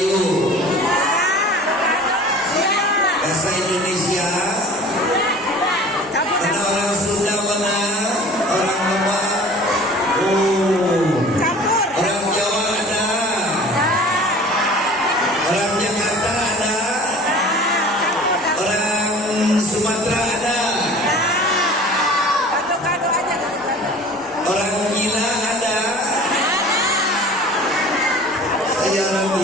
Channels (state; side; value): normal; both; correlation 0.44